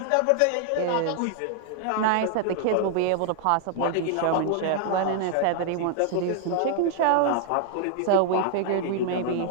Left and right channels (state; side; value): different; both; correlation -0.01